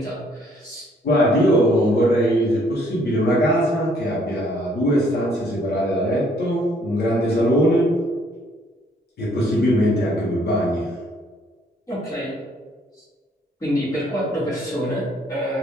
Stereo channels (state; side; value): normal; both; correlation 0.64